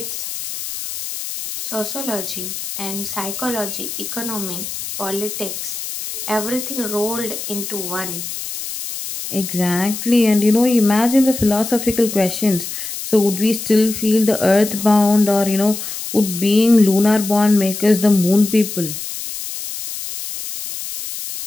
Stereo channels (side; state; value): left; noise; hiss, 7 dB below the sound